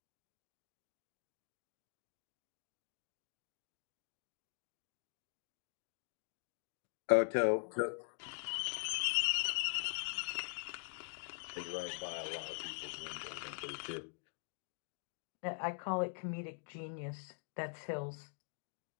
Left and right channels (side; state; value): right; silent; digital silence